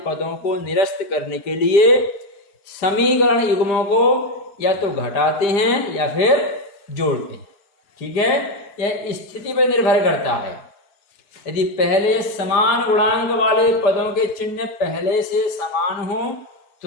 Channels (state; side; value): late; right; 5.0 ms